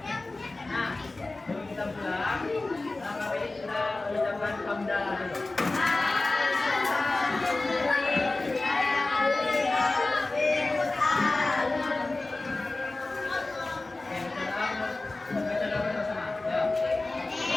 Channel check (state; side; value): quieter; right; 3.1 dB